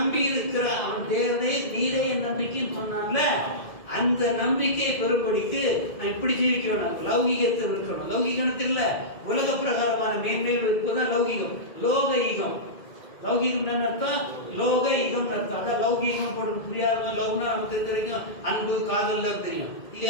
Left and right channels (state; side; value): late; right; 2.1 ms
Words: இருக்கிற அவன் தேவனே நீரே என் நம்பிக்கைன்னு சொன்னான்ல, அந்த நம்பிக்கையை பெறும்படிக்கு நான் இப்படி ஜீவிக்க வேணும். லௌகிகத்தை இருக்கணும். லௌகிகத்தில் இல்ல, உலக பிரகாரமான மேன்மைகள் இருப்பதுதான் லௌகிகம். லோக ஈகம், லௌகிகம் என்ன அர்த்தம்? லோக ஈகம் அர்த்தம். அதான் லௌகிகம் போட்டு புரியாத லவ்னா நமக்கு தெரிஞ்ச வரைக்கும் அன்பு காதல் தெரியும்